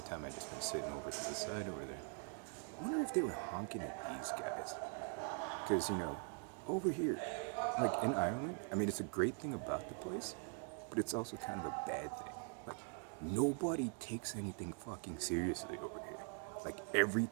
time I've just been sitting over to the side over there. I wonder if they were honking at these guys. Because, over here, like in Ireland, I mean, it's a great thing about the place, but it's also kind of a bad thing. Like, nobody takes anything fucking seriously over here. Like,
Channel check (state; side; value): quieter; left; 39.7 dB